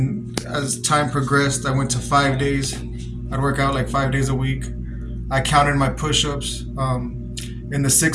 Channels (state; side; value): identical; both; correlation 1.00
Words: as time progressed, I went to 5 days. I'd work out like 5 days a week. I counted my push-ups. In the